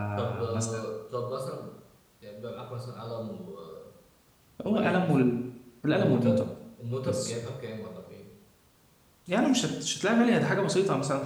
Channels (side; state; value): both; identical; correlation 1.00